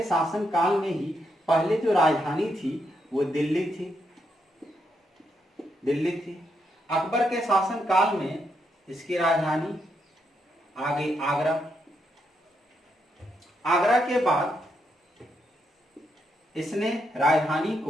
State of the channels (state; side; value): normal; both; correlation 0.80